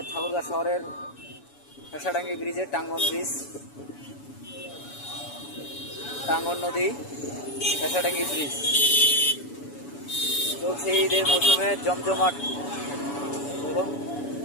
ঠাকুরগাঁও শহরের ফেসাডাঙ্গি ব্রিজে, টাঙ্গন ব্রিজ, টাঙ্গন নদী, ফেসাডাঙ্গি ব্রিজ। চলছে ঈদের মৌসুমে জমজমাট। দেখুন,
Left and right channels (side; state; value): right; late; 7.1 ms